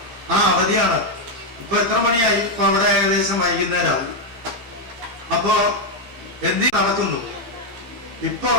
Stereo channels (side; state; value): left; late; 15 ms